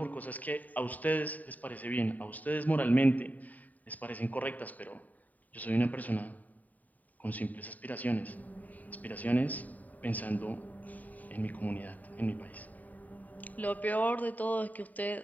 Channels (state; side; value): late; right; 0.076 ms